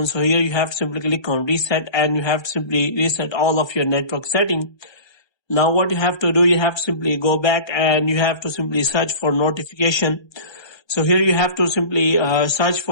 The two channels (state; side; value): late; right; 1.3 ms